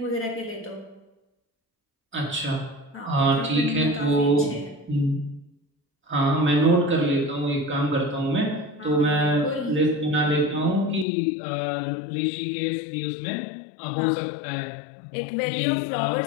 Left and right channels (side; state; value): right; drops out; at 11.1 s